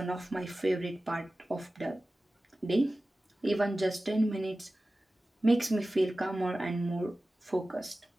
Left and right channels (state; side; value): normal; both; correlation 0.96